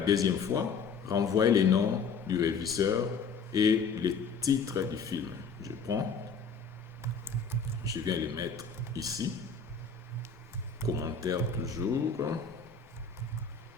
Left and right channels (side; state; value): right; quieter; 5.3 dB